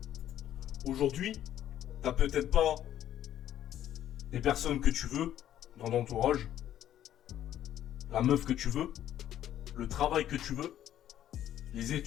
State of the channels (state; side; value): quieter; right; 11.6 dB